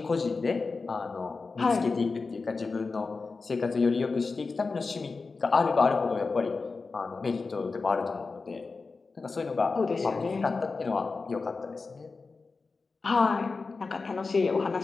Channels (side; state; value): right; quieter; 4.2 dB